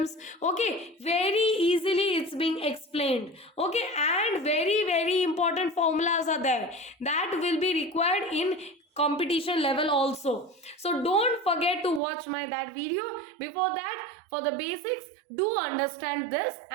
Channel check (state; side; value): drops out; left; at 12.0 s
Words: Okay, very easily it's being explained. Okay, and very important formulas are there that will be required in competition level also. So don't forget to watch that video. Before that, for the basics, do understand this